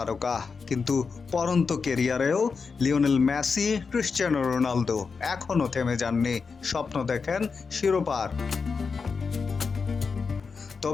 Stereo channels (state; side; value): quieter; right; 5.1 dB